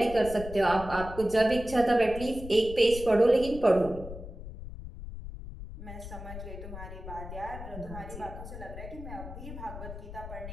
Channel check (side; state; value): left; noise; rumble, 11 dB below the sound